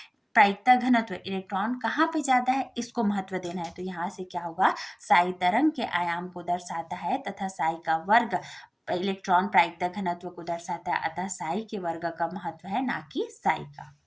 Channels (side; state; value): both; identical; correlation 1.00